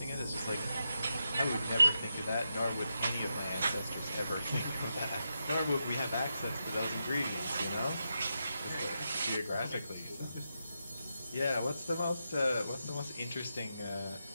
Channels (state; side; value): inverted; both; correlation -0.86